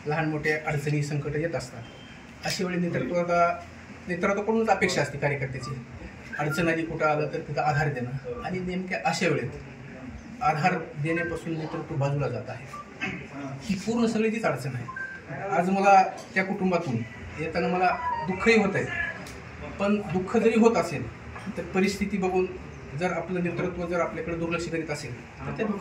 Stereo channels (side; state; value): both; identical; correlation 1.00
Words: लहान मोठ्या अडचणी संकट येत असतात. अशा वेळी नेतृत्वाकडूनच अपेक्षा असते कार्यकर्त्याची. अडचण आली कुठं आलं तर तिथं आधार देणं आणि नेमक्या अशा वेळेत आधार देण्यापासून नेतृत्व बाजूला जात आहे. ही पूर्ण सगळी तीच अडचण आहे. आज मला त्या कुटुंबातून येताना मला दुःखही होत आहे. पण दुःख जरी होत असेल तर परिस्थिती बघून जर आपलं नेतृत्व जर आपल्याकडे दुर्लक्ष करीत असेल तर त्या